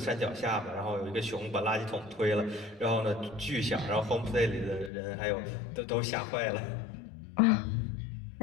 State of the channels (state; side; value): drops out; right; at 4.9 s